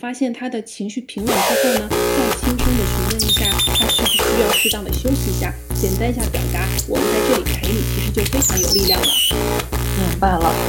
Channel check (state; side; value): identical; both; correlation 1.00